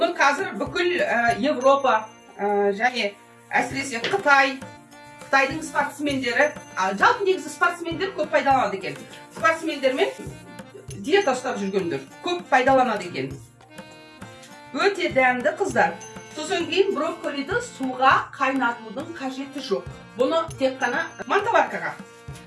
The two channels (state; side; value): identical; both; correlation 1.00